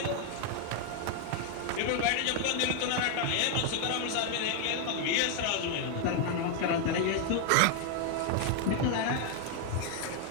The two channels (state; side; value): different; both; correlation 0.00